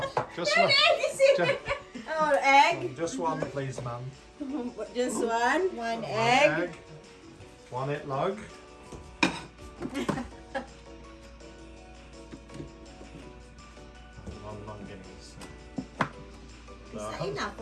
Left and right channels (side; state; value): both; identical; correlation 1.00